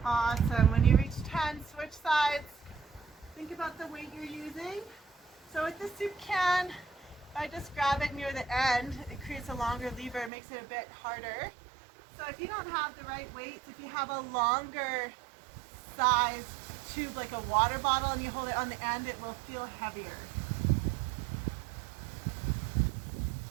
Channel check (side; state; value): left; drops out; at 10.3 s